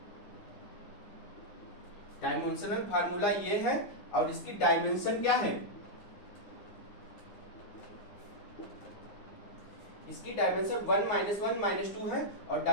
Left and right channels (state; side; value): late; right; 9.7 ms